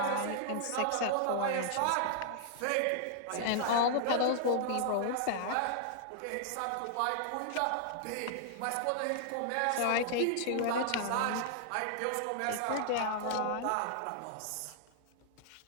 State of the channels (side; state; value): both; different; correlation -0.01